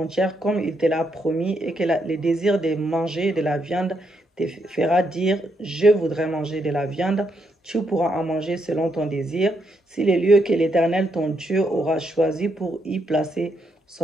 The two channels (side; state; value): both; normal; correlation 0.78